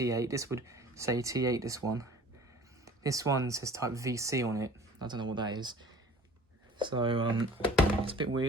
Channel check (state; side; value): normal; both; correlation 0.47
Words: This would say T8, this one. This one says type VC on it. I don't know what that is. So it's a bit